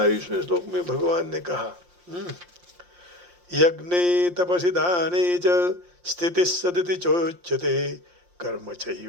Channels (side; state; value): left; late; 5.7 ms